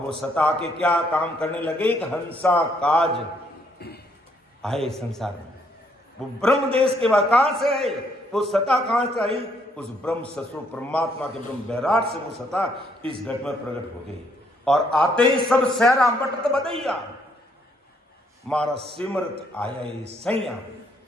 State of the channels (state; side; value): normal; both; correlation 0.70